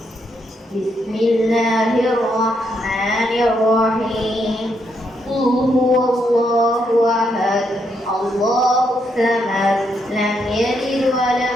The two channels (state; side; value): normal; both; correlation 0.77